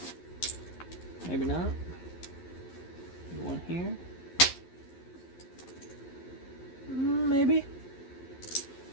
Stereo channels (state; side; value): late; right; 11 ms